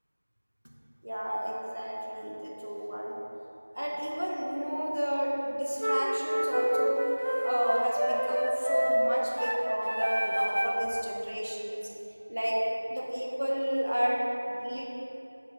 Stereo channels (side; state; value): both; inverted; correlation -1.00